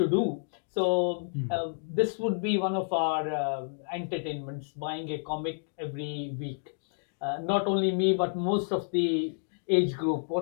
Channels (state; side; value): silent; right; digital silence